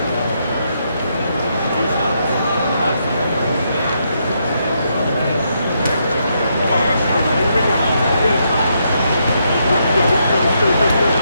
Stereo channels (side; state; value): both; inverted; correlation -0.78